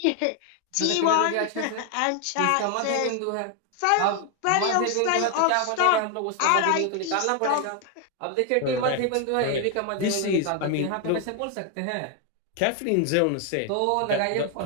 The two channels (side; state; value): both; different; correlation 0.01